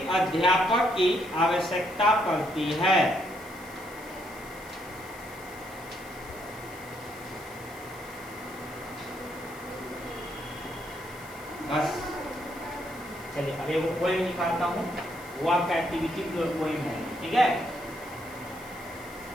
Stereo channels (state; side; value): noise; left; hiss, 20 dB below the sound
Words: अध्यापक की आवश्यकता पड़ती है, बस चलिए अब एक पोएम निकालता हूँ, वो आपका एक्टिविटी पोएम है, ठीक है।